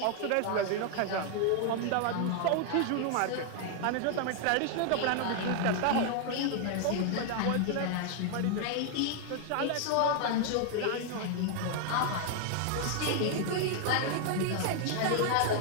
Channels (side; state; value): both; different; correlation 0.00